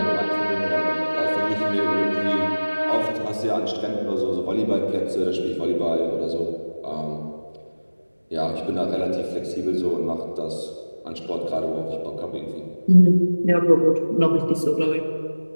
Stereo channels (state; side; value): inverted; both; correlation -1.00